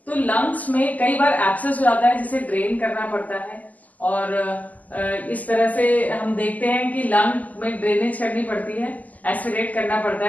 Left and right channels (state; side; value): late; right; 0.078 ms